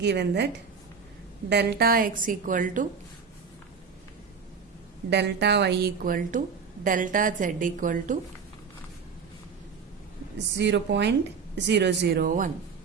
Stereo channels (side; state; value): left; quieter; 5.8 dB